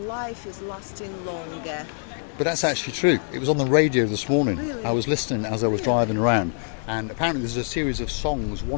is lasting longer. But that's actually true. It was on the radio this morning. Really? I was listening as I was driving around, and apparently there's a series of songs,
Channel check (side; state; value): right; silent; digital silence